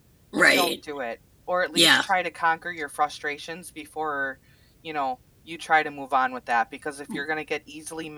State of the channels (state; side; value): identical; both; correlation 1.00